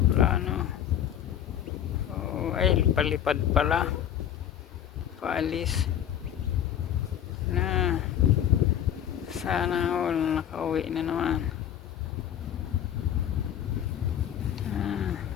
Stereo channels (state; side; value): quieter; right; 10.2 dB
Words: Oh, ay, palipad pala. Paalis. Na. Sana all nakauwi na naman.